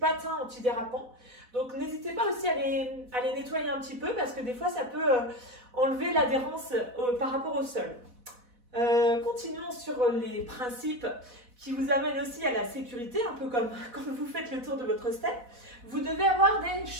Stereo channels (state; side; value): late; left; 4.1 ms